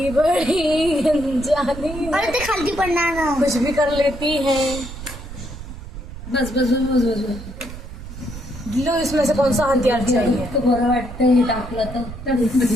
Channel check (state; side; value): noise; right; rumble, 11 dB below the sound